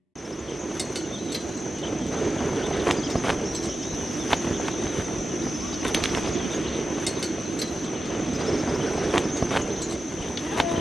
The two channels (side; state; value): both; normal; correlation 0.92